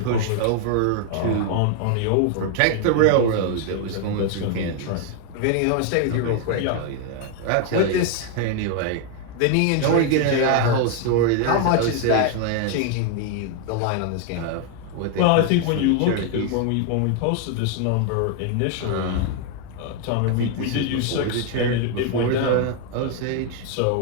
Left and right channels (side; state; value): both; different; correlation 0.01